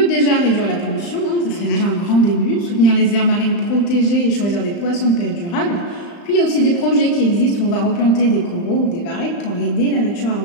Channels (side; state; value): right; late; 35 ms